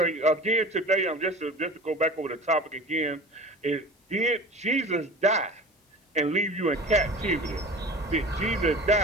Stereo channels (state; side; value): normal; both; correlation 0.37